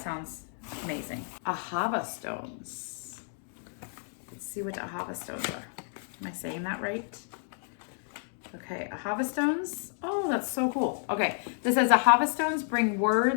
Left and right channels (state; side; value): silent; right; 55 dB below the other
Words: sounds amazing. Ahava stones. Let's see what ahava stones are. Am I saying that right? Okay, ahava stones. Oh, that's so cool. Okay, this says ahava stones bring